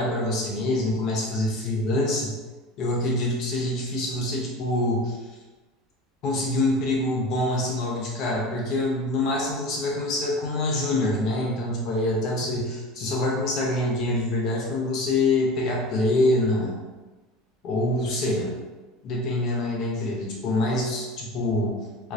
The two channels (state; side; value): normal; both; correlation 0.34